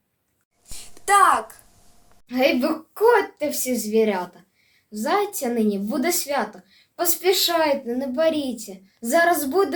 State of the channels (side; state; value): both; identical; correlation 1.00